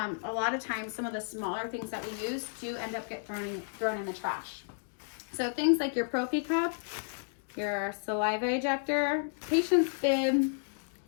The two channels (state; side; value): silent; right; digital silence